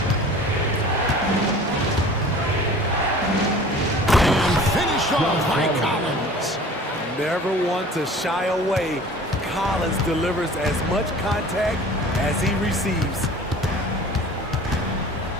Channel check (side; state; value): both; normal; correlation 0.44